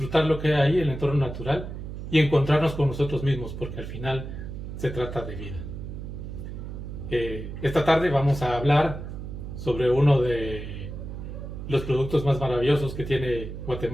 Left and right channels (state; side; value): noise; right; hum, 8 dB below the sound